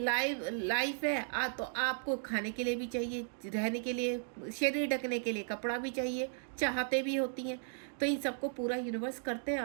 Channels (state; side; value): silent; left; digital silence